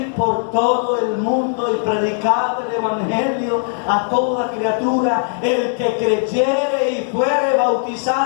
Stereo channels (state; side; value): silent; right; 63 dB below the other